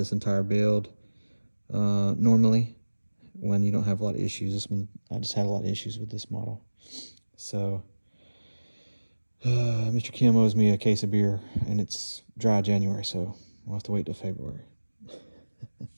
entire build. Normally, when you don't have a lot of issues. This one, I just had a lot of issues with this model. So Mr. Kim owes me a case of beer, and it's dry January, so we'll have to wait till February.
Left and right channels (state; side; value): inverted; both; correlation -1.00